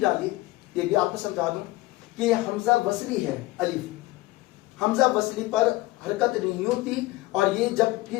ڈالی؟ یہ بھی آپ کو سمجھا دوں کہ یہ حمزہ وصلی ہے، الف حمزہ وصلی پر حرکت نہیں ہوتی، اور یہ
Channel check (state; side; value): quieter; right; 19.3 dB